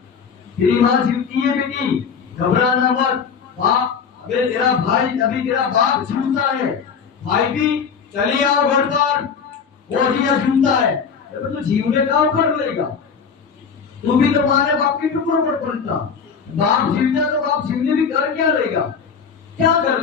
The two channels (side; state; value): right; quieter; 6.3 dB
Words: تیری ماں جیوتی ہے بیٹی، گھبرانا مت، باپ ابھی تیرا بھائی، ابھی تیرا باپ جیوتا ہے، بھائی بھی چلی آؤ گھر پر، وہ بھی جیوتا ہے، تو جیونے کا کر لے گا، تو بھی تمہارے باپ کے ٹکڑوں پر پلتا، باپ جیوتا تو باپ جیونے بھی کر کیا لے گا؟ کیا کر